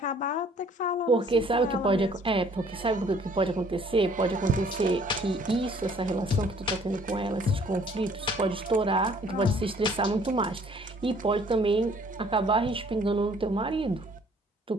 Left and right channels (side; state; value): both; normal; correlation 0.58